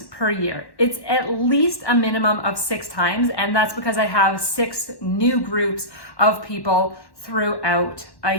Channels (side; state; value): right; late; 1.1 ms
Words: per year. It's at least a minimum of 6 times, and that's because I have 6 new groups of people throughout a